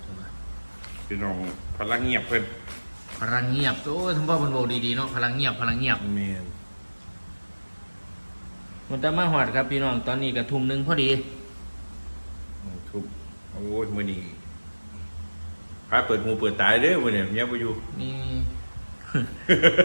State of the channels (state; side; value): inverted; both; correlation -1.00